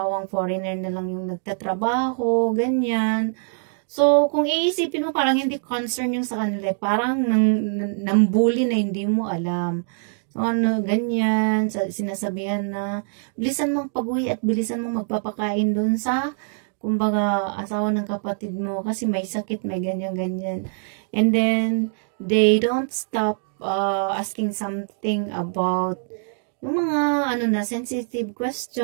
foreigner na lang yung nagtatrabaho, ganyan. So, kung iisipin mo, parang hindi concern yung sa kanila, parang nambuli na hindi mo alam. So, ganyan, sinasabihan na, bilisan mong pag-uwi at bilisan mong magpapakain dun sa kumbaga, asawa ng kapatid mo kasi may sakit, may ganyan-ganyan. And then, they don't stop asking something about yung mga, sensitive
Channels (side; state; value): left; silent; digital silence